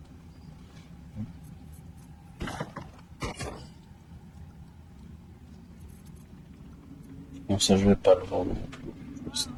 Bon, ça je vais pas le vendre non plus. Je vais le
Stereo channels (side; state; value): both; identical; correlation 1.00